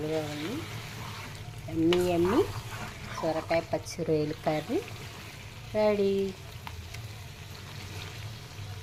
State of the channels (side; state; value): both; identical; correlation 1.00